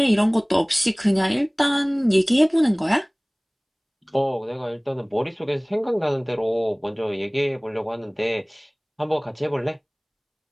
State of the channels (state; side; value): identical; both; correlation 1.00